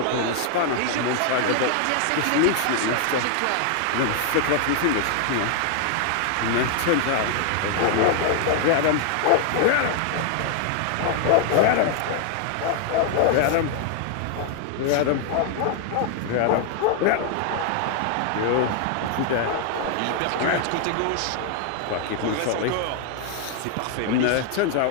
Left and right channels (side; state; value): both; different; correlation 0.00